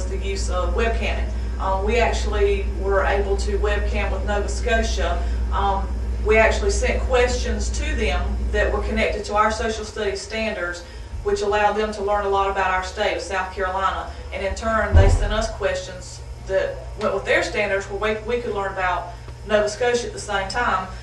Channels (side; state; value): both; identical; correlation 1.00